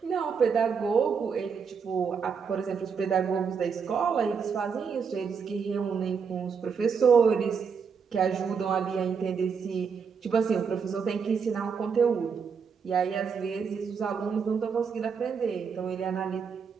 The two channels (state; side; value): quieter; left; 6.1 dB